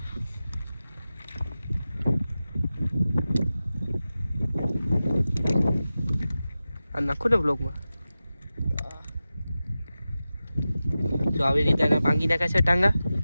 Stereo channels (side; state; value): both; inverted; correlation -0.94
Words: આ નાખો ને બ્લોકમાં જો આવી રીતે એને ભાંગી નાખે છે ટાંગા